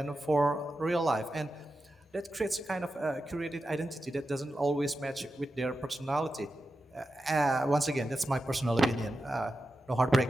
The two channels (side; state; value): both; normal; correlation 0.91